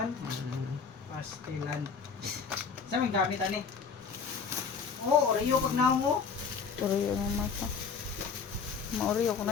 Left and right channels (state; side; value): quieter; right; 5.7 dB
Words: Pastilan. Sa may gamit, ani? Oo, Oreo pag naong mo. Uriyo ng mata. Mauriyo ko